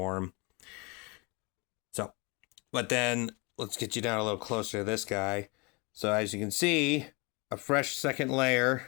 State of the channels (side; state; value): right; quieter; 29.2 dB